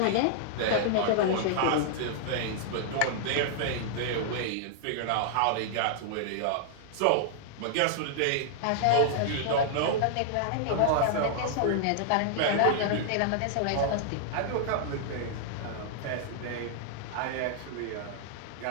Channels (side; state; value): both; different; correlation -0.01